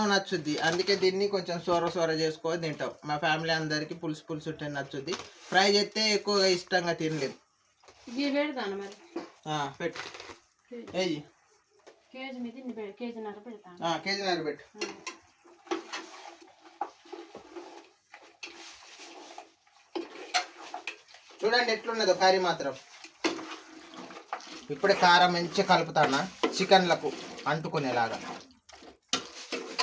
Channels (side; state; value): both; identical; correlation 1.00